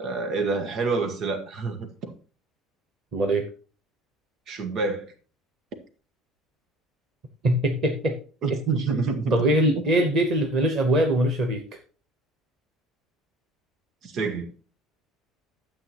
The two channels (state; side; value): normal; both; correlation 0.47